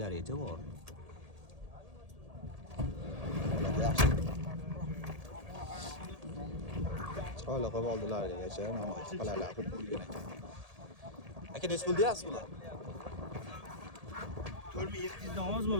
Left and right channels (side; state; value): left; late; 1.8 ms